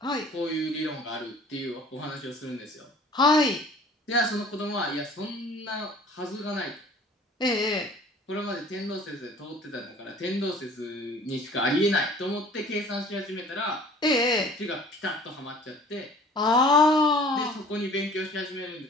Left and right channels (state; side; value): normal; both; correlation 0.49